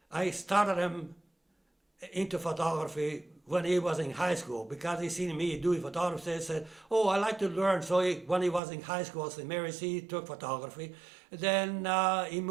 I started him into photography when he was in high school because he seen me doing photography. He said, "Oh, I like to learn." So when he was in high school, Sault Ste Marie, he took photography. Then he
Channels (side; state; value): left; drops out; at 8.6 s